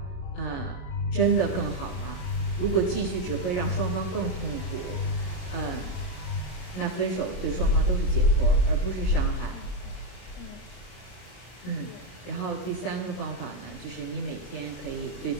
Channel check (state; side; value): late; right; 33 ms